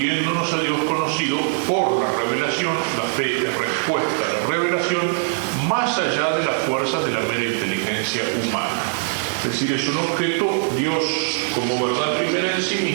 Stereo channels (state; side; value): silent; left; digital silence